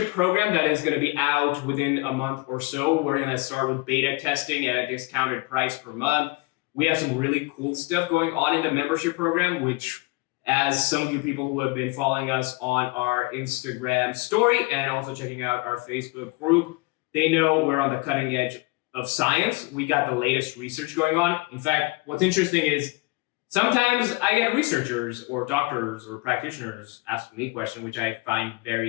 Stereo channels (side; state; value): right; quieter; 24.5 dB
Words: program that is going to be out within a month or so. We're going to start with beta testing at a discounted price per month. We have some really cool stuff going on in the membership program, which, as some of you people who have been following us on our Instagram story and also checking out our Facebook group, they know we're on the cutting edge of science. We got the latest research going on. In fact, what's interesting is sometimes I get researchers or doctors or practitioners ask me questions, which I find